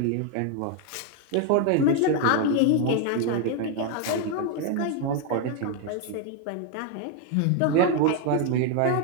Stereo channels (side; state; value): both; different; correlation 0.01